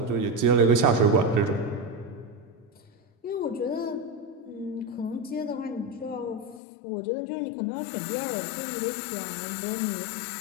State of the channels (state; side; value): drops out; right; at 6.6 s